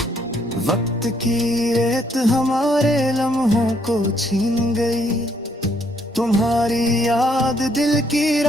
वक्त की रेत हमारे लम्हों को छीन गई, तुम्हारी याद दिल की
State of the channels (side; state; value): both; normal; correlation 0.70